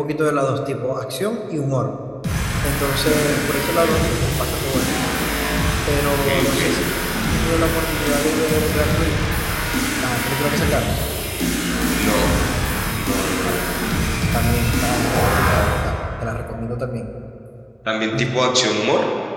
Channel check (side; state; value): both; identical; correlation 1.00